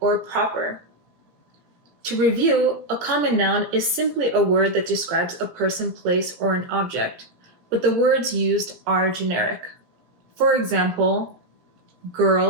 or proper. To review, a common noun is simply a word that describes a person, place, or an object, but the words used are generic. For example,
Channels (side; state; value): left; late; 17 ms